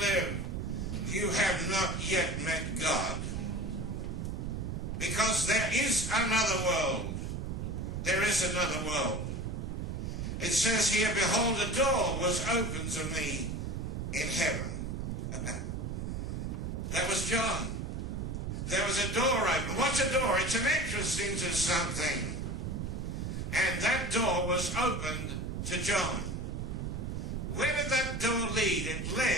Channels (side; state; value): right; noise; rumble, 3 dB below the sound